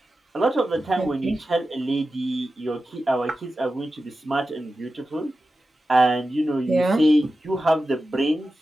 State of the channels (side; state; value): both; normal; correlation 0.93